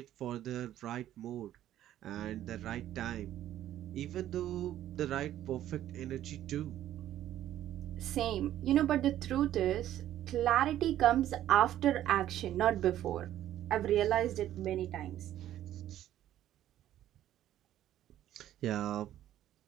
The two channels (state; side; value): quieter; left; 12.4 dB